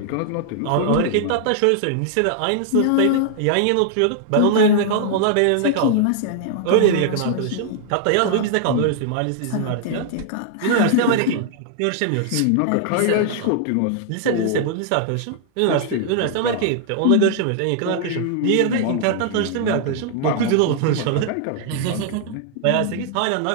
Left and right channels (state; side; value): different; both; correlation -0.01